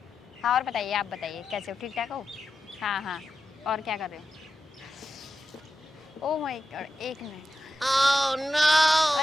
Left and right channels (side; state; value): both; normal; correlation 0.90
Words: हाँ और बताइए, आप बताइए कैसे हो, ठीक ठाक हो? हाँ हाँ और क्या कर रहे हो? ओह माय गॉड, एक मिनट। Oh no.